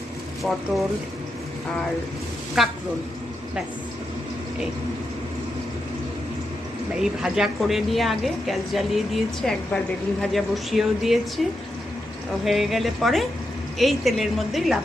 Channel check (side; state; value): both; normal; correlation 0.85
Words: পটল আর কাঁকরোল, ব্যাস। এই ভাজা করে নিয়ে আগে গ্যাস জ্বালিয়ে দিয়েছি, একবার বেগুন ভাজা বসিয়েও দিয়েছি। হয়ে গেলে পরে এই তেলের মধ্যেই